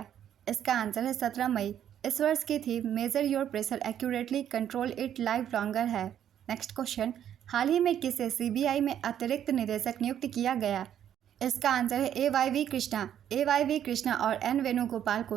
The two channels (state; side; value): quieter; left; 10.0 dB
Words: इसका आंसर है 17 मई। इस वर्ष की theme major your pressure accurately control it live longer है। नेक्स्ट क्वेश्चन, हाल ही में किसे CBI में अतिरिक्त निदेशक नियुक्त किया गया? इसका आंसर है AYV कृष्णा। AYV कृष्णा और N वेणुगोपाल